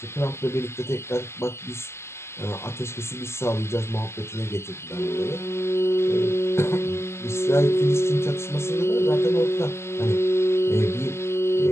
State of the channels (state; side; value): late; right; 0.13 ms